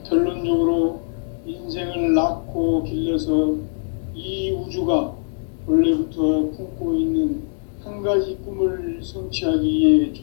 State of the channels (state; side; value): silent; right; digital silence